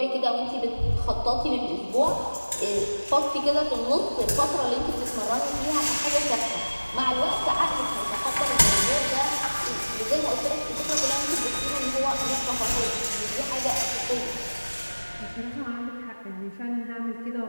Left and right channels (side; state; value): both; inverted; correlation -1.00